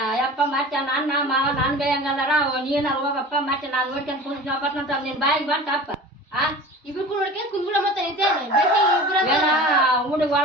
ಯಪ್ಪ ಮತ್ತೆ ನನ್ನ ಮಾವ ನಾನ್ ಬೇಯಂಗದಾರ ನೀನ ಹೋಗಪ್ಪ ಮತ್ತೆ ನಾನ್ ನೋಡ್ಕೊಂಡ್ ಕುಂತ ನಿನ್ ಬಾಯಿಗೆ ಬಂತಪ್ಪ ಇಬ್ರು ನೋಡ್ಕೊಂಡ್ ಕುಂದ್ಬಿಡ ಮತ್ತೆ ಹುಡುಗ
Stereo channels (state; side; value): normal; both; correlation 0.38